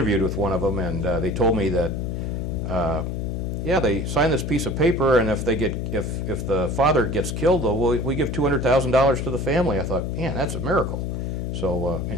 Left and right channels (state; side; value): noise; left; hum, 2 dB below the sound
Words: with one of them, and they told me that, yeah, they sign this piece of paper, and if the father gets killed, though, we give $200,000 to the family. I thought, man, that's a miracle. So